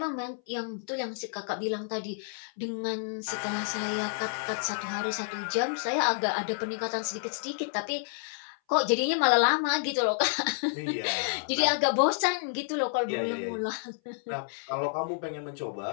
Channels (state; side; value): silent; right; 58 dB below the other